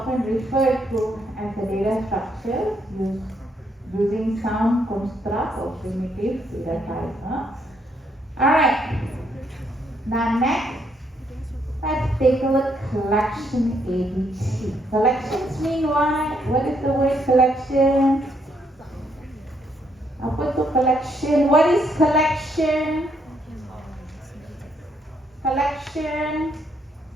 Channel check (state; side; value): normal; both; correlation 0.73